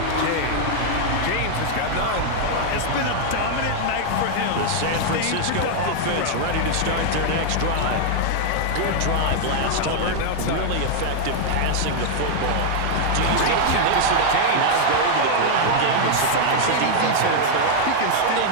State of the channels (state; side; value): different; both; correlation 0.00